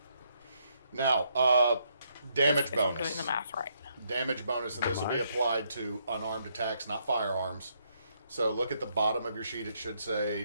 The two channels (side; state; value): both; inverted; correlation -0.74